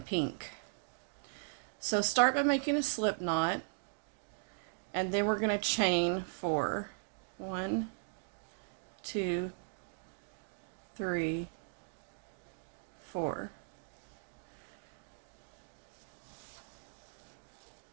pink. So start by making a slip knot, and then we're going to chain 4. 1, 2, 3, 4.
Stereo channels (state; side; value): silent; left; digital silence